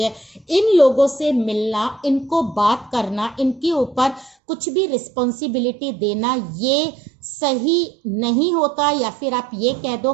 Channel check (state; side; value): drops out; left; at 4.4 s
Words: इन लोगों से मिलना, इनको बात करना, इनके ऊपर कुछ भी रिस्पॉन्सिबिलिटी देना ये सही नहीं होता, या फिर आप ये कह दो